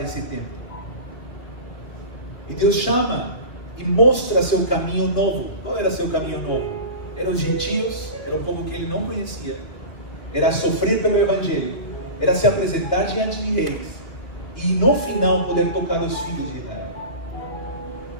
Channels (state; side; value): late; right; 2.2 ms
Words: esse tempo. E Deus chama e mostra seu caminho novo. Qual era seu caminho novo? Eram os gentios, era o povo que ele não conhecia, era sofrer pelo Evangelho, era se apresentar diante de reis, e no final poder tocar os filhos de Israel.